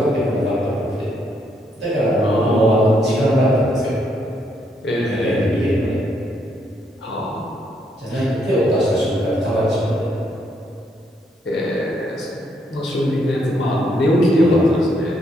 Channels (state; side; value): normal; both; correlation 0.74